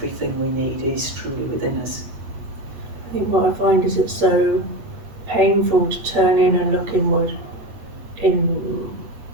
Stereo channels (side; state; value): left; late; 8.7 ms